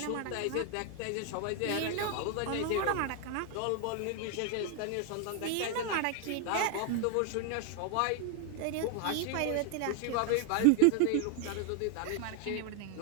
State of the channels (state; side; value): different; both; correlation 0.00